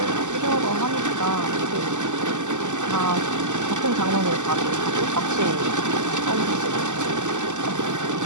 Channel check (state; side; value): late; left; 0.84 ms